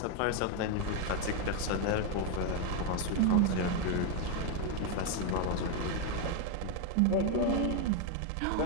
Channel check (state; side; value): different; both; correlation 0.01